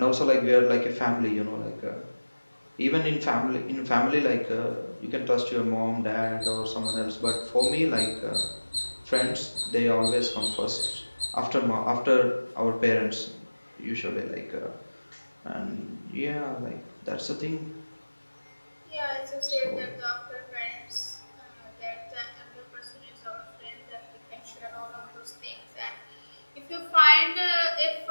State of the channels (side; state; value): both; inverted; correlation -1.00